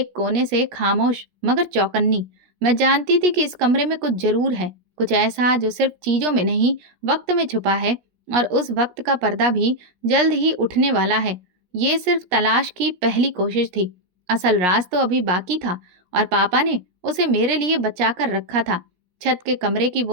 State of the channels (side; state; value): left; late; 17 ms